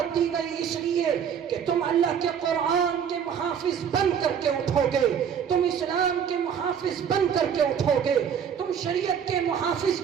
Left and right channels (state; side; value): quieter; left; 7.9 dB